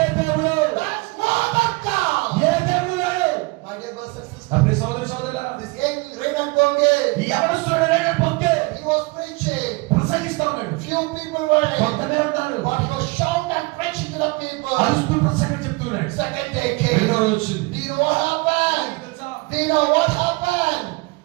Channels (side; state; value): left; quieter; 25.3 dB